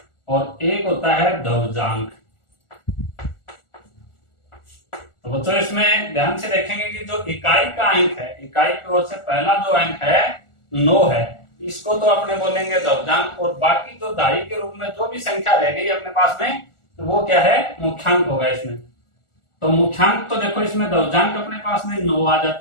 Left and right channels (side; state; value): right; late; 1.4 ms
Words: और एक होता है ध्वजांक। तो बच्चों इसमें ध्यान से देखेंगे कि जो इकाई का अंक है, इकाई की ओर से पहला जो अंक है 9 है, इसको तो अपने बोलेंगे ध्वजांक। और बाकी जो दाई के रूप में जो भी संख्या रह गई अपने पास में, तो वो क्या है, मुख्यांक होगा इसमें। तो मुख्यांक तो देखो इसमें ध्वजांक अपने पास में 9 आ